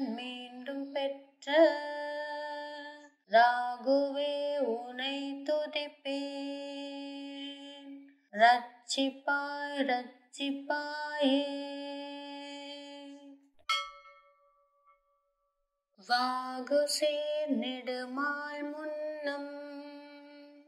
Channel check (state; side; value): identical; both; correlation 1.00